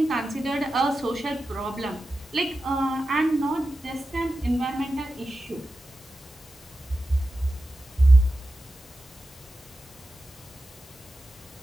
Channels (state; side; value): normal; both; correlation 0.92